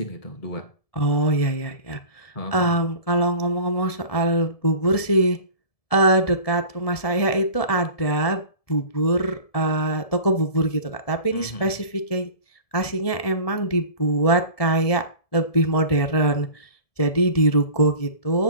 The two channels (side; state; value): right; late; 1.7 ms